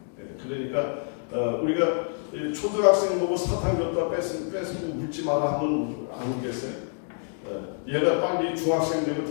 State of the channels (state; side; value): silent; right; 60 dB below the other